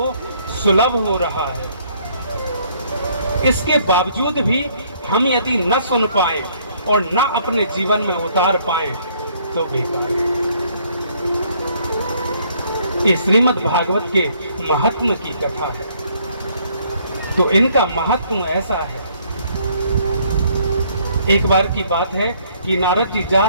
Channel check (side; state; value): both; inverted; correlation -0.65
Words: सुलभ हो रहा है। इसके बावजूद भी हम यदि न सुन पाए और न अपने जीवन में उतार पाए तो बेकार है। ये श्रीमद् भागवत के महात्म की कथा है। तो इनका महत्व ऐसा है। एक बार की बात है कि नारद जी जा